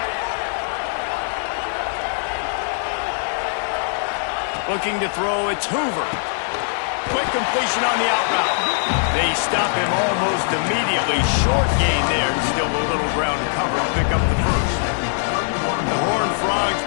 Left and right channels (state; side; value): silent; right; 65 dB below the other